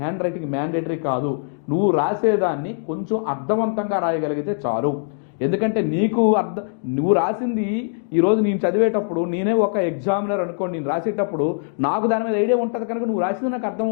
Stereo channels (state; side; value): silent; right; digital silence